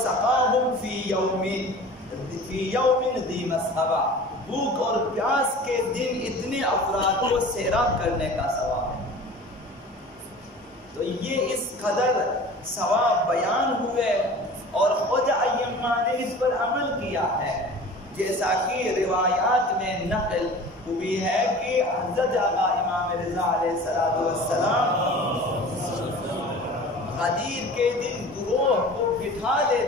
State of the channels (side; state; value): both; normal; correlation 0.40